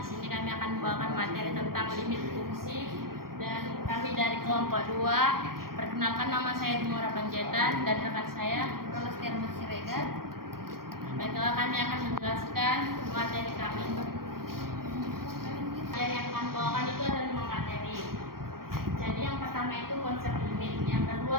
sini kami akan membawakan materi tentang limit fungsi dan kami dari kelompok 2. Perkenalkan, nama saya Dimora Panjaitan dan rekan saya Rolastia Siregar. Baiklah, kami akan menjelaskan materi kami. Yang akan bawakan itu ada 5 materi. Jadi yang pertama itu konsep limit, yang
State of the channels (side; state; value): left; late; 0.93 ms